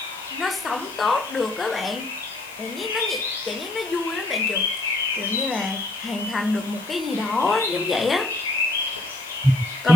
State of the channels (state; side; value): normal; both; correlation 0.64